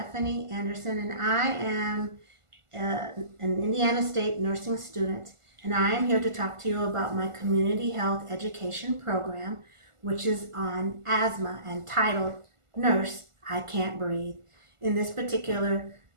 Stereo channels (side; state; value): left; late; 1.5 ms